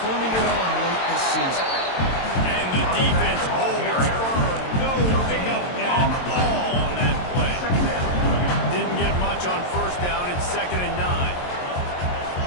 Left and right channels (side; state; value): right; late; 22 ms